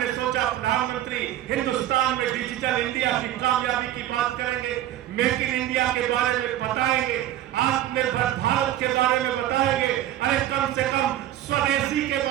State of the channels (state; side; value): quieter; left; 13.0 dB